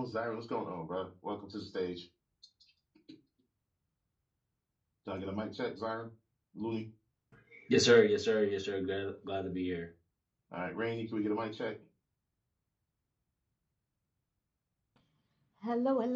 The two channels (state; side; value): identical; both; correlation 1.00